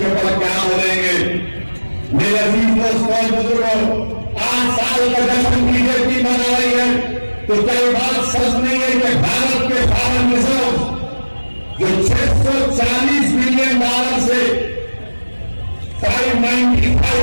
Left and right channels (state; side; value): inverted; both; correlation -1.00